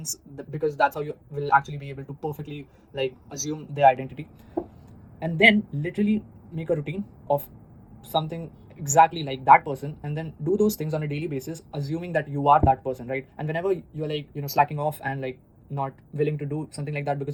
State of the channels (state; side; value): identical; both; correlation 1.00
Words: because that's how you will actually be able to perfectly like assume their identity. And then literally make a routine of something exactly like that person, and then do those things on a daily basis, assuming that you are that person, right? And whenever you're like slacking off and like not willing to do something like that